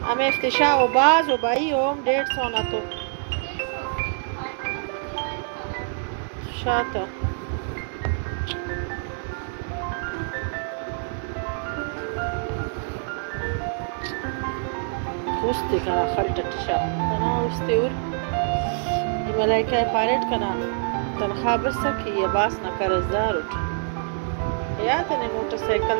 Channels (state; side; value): silent; left; digital silence